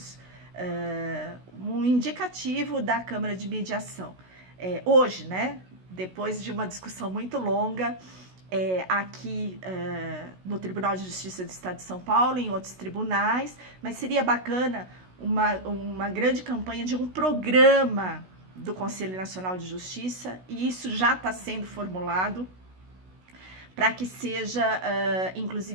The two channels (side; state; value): left; late; 16 ms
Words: um indicativo da Câmara de Mediação. Hoje, né? Depois de uma discussão muito longa, aqui no Tribunal de Justiça do Estado de São Paulo, em outros tribunais, mas seria bacana uma grande campanha de um programa do Conselho Nacional de Justiça, e isso já está sendo formulado para que seja,